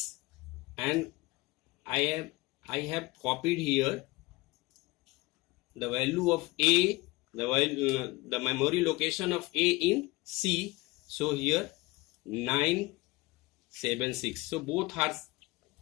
and I have copied here the value of A, the memory location of A in C. So here 976. So both are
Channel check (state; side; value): quieter; right; 22.2 dB